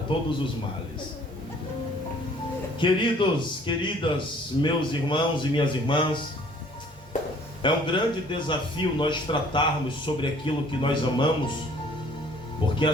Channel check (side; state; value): both; normal; correlation 0.56